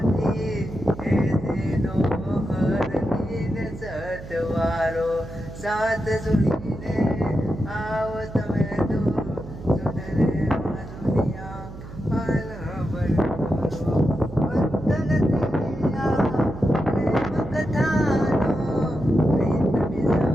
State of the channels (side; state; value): right; noise; hum, 13 dB below the sound